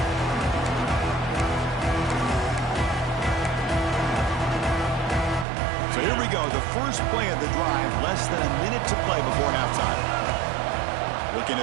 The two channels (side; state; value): left; drops out; at 5.5 s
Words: So here we go, the first play of the drive, less than a minute to play before halftime. Looking